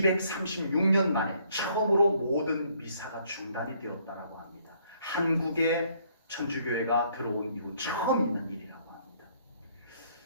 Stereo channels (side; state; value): both; inverted; correlation -0.66